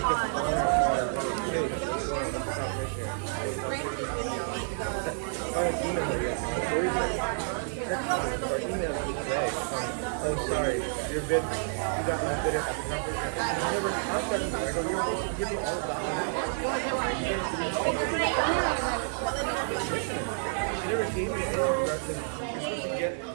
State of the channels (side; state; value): left; silent; digital silence